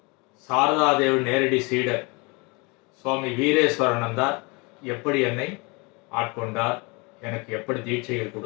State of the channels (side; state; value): right; quieter; 28.4 dB